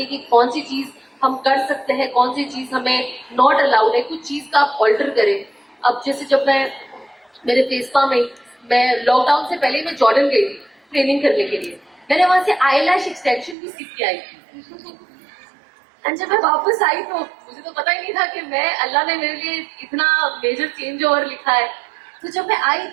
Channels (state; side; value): drops out; left; at 13.6 s